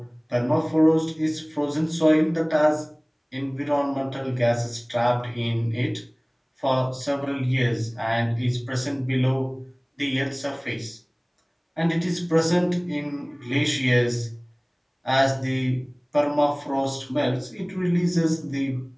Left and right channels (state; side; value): identical; both; correlation 1.00